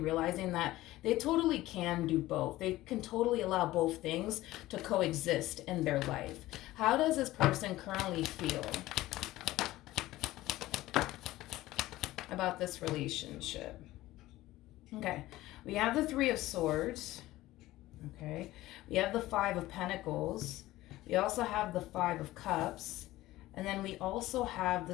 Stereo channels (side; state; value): right; quieter; 16.8 dB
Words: that they totally can do both. They can totally allow both things to coexist in their life. How does this person currently feel about this relationship? Okay, we have the Three of Swords. Okay, we have the Five of Pentacles. We also have the Five of Cups. And then we also have the